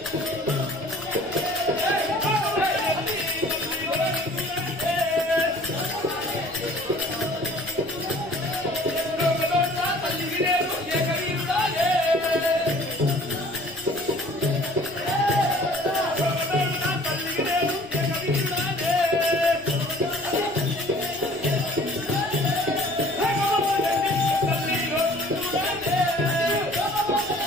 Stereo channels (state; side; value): normal; both; correlation 0.51